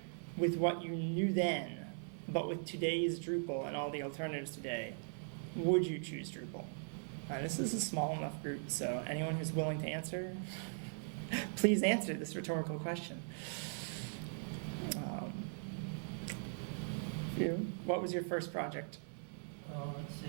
with what you knew then, but with today's Drupal and all the alternatives today, would you choose Drupal? This is a small enough group, so anyone who's willing to answer, please answer this rhetorical question. What was your first project? Let's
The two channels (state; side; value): silent; left; 51 dB below the other